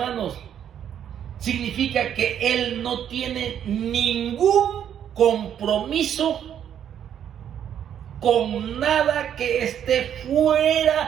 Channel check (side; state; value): left; quieter; 9.5 dB